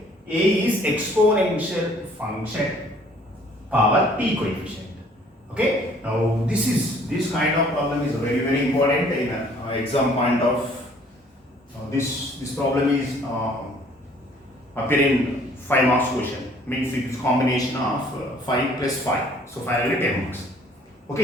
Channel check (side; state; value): both; normal; correlation 0.58